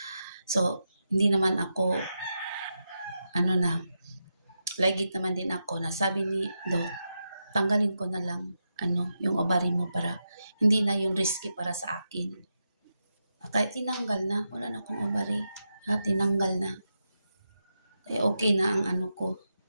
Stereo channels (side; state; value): both; inverted; correlation -0.87